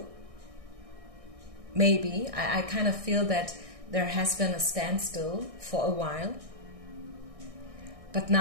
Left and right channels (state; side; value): late; left; 1.6 ms